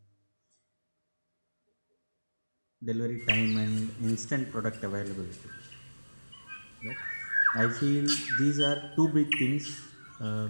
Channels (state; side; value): inverted; both; correlation -1.00